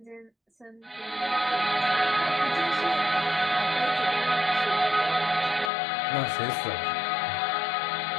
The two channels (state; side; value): drops out; right; at 5.7 s